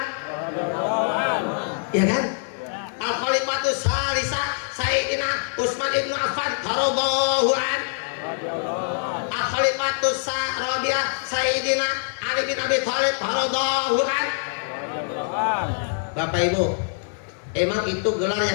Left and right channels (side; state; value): right; silent; 62 dB below the other